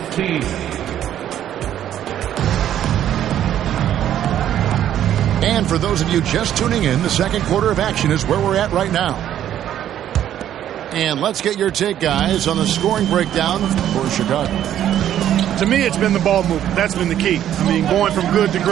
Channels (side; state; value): left; quieter; 11.0 dB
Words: And for those of you just tuning in, the second quarter of action is where we're at right now. And let's get your take, guys, on the scoring breakdown for Chicago. To me, it's been the ball movement. That's been the key. I mean, going from good to